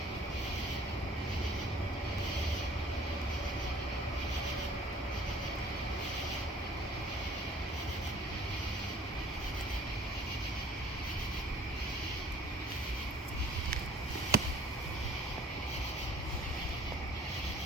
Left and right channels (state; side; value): normal; both; correlation 0.52